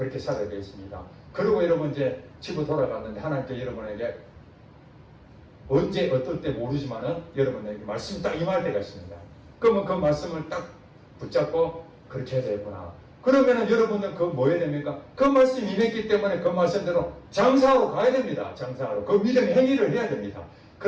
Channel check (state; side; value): identical; both; correlation 1.00